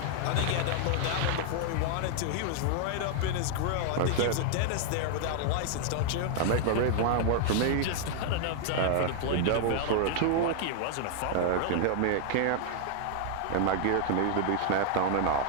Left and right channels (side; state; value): both; different; correlation 0.00